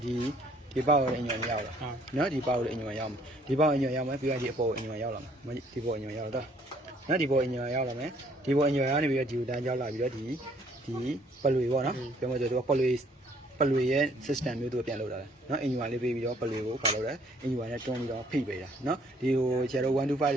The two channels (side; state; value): both; normal; correlation 0.62